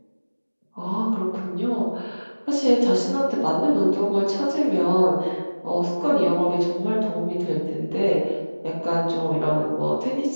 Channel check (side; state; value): both; inverted; correlation -1.00